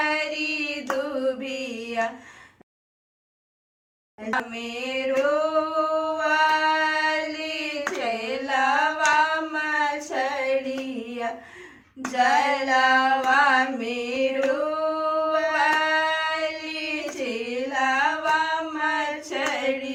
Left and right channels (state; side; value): identical; both; correlation 1.00